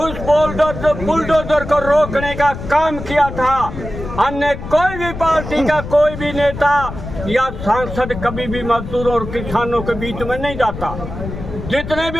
बुलडोजर को रोकने का काम किया था। अन्य कोई भी पार्टी का कोई भी नेता या सांसद कभी भी मजदूरों और किसानों के बीच में नहीं जाता। जितने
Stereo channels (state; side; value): noise; left; rumble, 9 dB below the sound